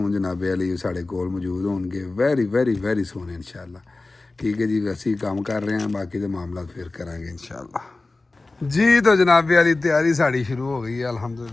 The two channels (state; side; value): quieter; right; 3.3 dB